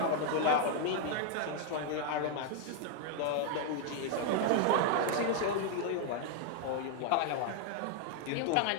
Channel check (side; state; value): both; different; correlation 0.00